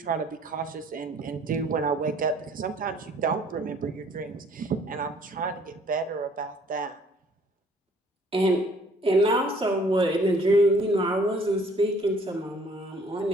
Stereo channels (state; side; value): normal; both; correlation 0.58